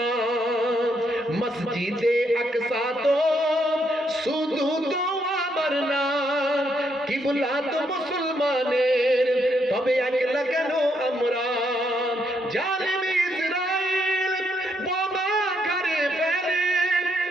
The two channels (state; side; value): normal; both; correlation 0.75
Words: मस्जिदे अक्सा तो শুধু তো আমার না কিবলা তো মুসলমানের তবে একলা কেন আমরা জালিম ইসরাইল বোমা করে ফেলে